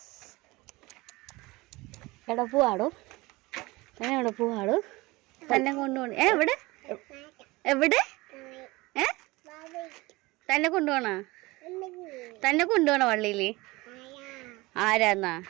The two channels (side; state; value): left; quieter; 21.9 dB